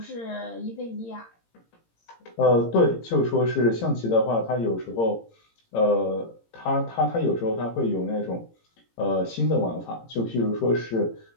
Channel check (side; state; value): right; late; 18 ms